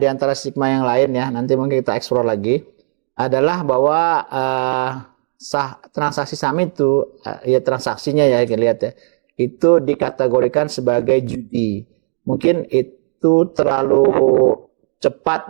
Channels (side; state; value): left; silent; digital silence